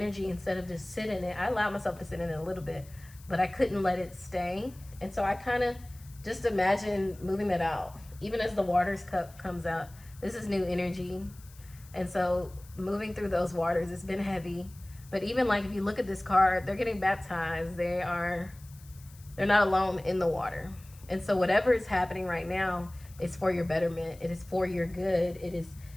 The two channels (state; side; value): noise; left; hiss, 24 dB below the sound